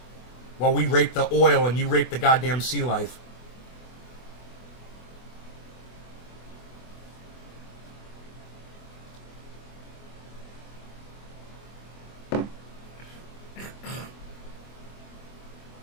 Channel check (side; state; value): right; late; 24 ms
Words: While we rape the oil and you rape the goddamn sea life.